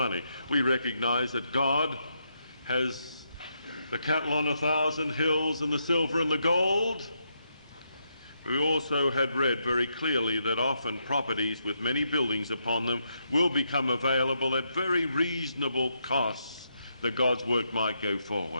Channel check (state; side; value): inverted; both; correlation -0.79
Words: We recognize that God has the cattle on 1,000 hills and the silver and the gold. We also had read very clearly that often properties with many buildings upon them will become available at very reasonable costs, that God's work might go